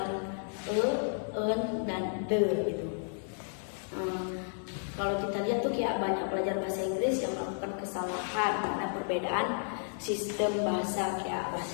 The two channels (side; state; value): right; silent; 55 dB below the other